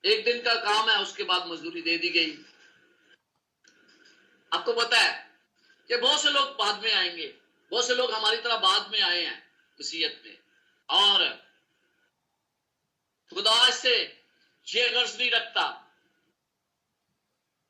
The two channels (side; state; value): both; identical; correlation 1.00